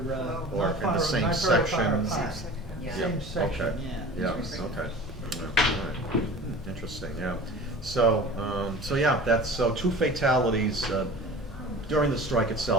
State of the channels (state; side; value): normal; both; correlation 0.39